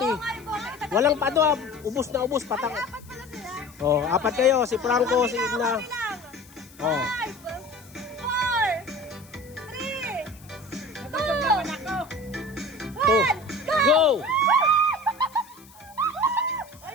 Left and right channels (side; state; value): left; noise; hiss, 24 dB below the sound